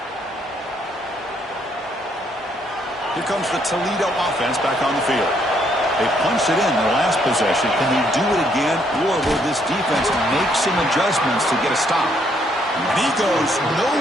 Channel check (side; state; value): both; normal; correlation 0.70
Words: Here comes the Toledo offense back on the field. They punched it in their last possession. Can they do it again, or will this defense make some adjustments to get a stop? And he goes